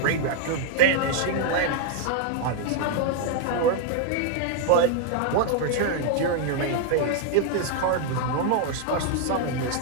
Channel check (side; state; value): both; different; correlation 0.00